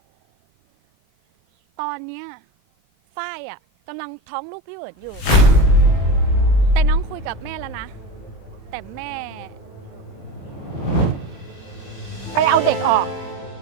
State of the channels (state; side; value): late; right; 21 ms